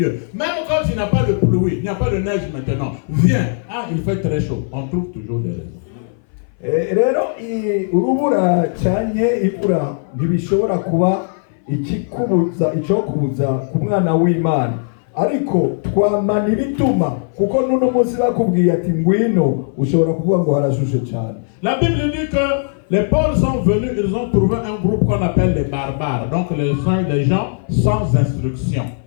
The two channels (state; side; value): silent; right; 62 dB below the other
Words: Même quand il n'y a pas de pluie, il n'y a pas de neige maintenant. Viens, il fait très chaud. On trouve toujours des raisons. Rero urubura cyane imvura ntibishobora kuba ikikubuza icyokubuza ku mwana w'Imana ariko twamana ibituma kuko nuno munsi bakubwiye ati ngwino ushobora kuvuga ngo harashushe cyane. La Bible dit que les Pauls sont venus, ils ont trouvé un groupe qu'on appelle les barbares, donc les gens sans instruction.